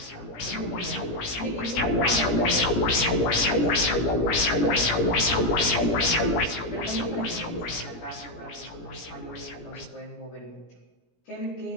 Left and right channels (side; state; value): right; late; 17 ms